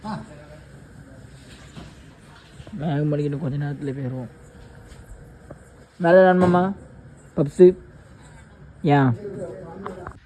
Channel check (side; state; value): both; identical; correlation 1.00